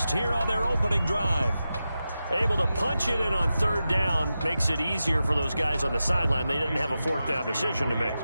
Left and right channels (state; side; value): inverted; both; correlation -0.91